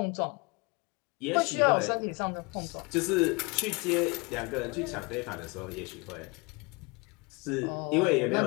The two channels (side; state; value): right; quieter; 28.4 dB